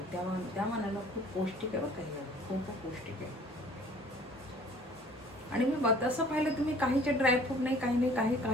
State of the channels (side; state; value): both; normal; correlation 0.52